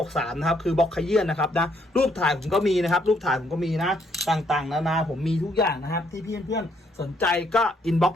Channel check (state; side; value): normal; both; correlation 0.70